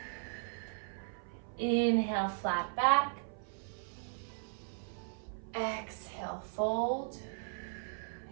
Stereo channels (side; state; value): left; silent; 53 dB below the other